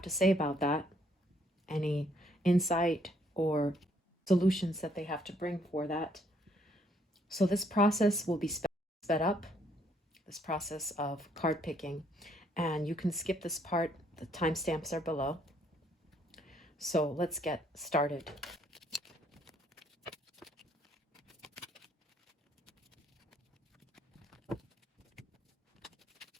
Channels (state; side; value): normal; both; correlation 0.68